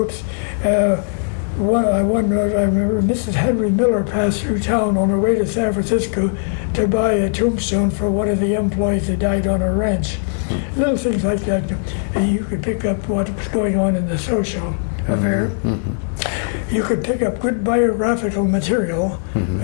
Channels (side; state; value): right; silent; 62 dB below the other